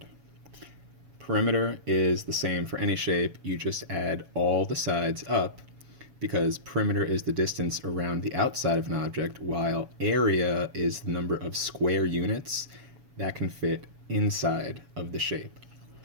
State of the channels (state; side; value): late; left; 7.2 ms